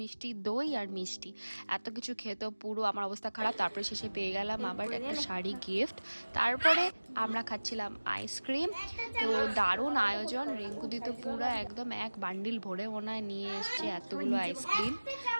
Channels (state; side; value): inverted; both; correlation -1.00